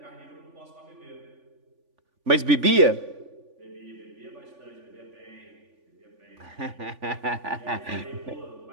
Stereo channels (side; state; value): left; late; 3.5 ms